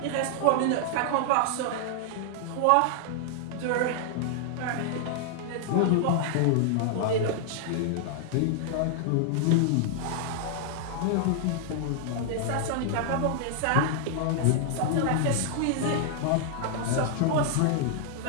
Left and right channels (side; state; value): both; different; correlation -0.01